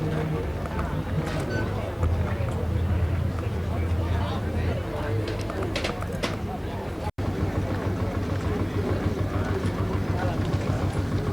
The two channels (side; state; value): both; identical; correlation 1.00